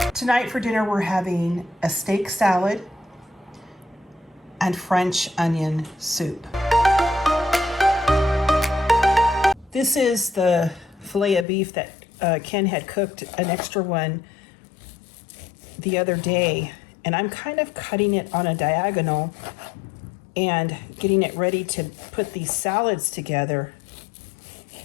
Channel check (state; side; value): drops out; right; at 11.5 s